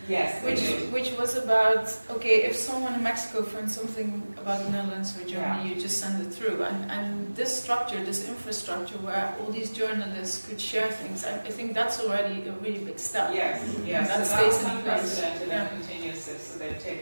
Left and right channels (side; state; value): both; inverted; correlation -1.00